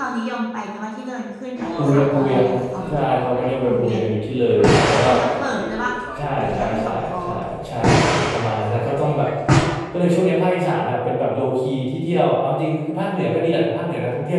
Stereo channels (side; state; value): both; identical; correlation 1.00